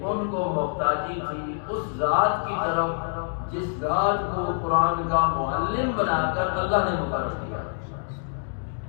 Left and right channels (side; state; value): right; silent; digital silence